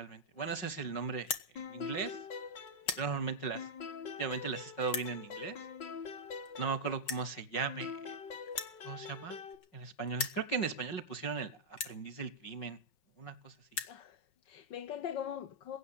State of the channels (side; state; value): right; late; 5.4 ms